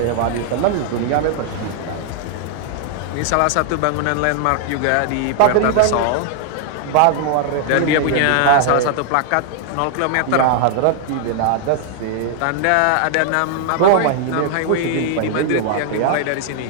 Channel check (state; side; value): different; both; correlation 0.00